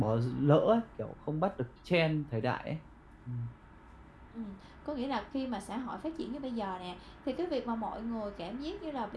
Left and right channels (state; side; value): identical; both; correlation 1.00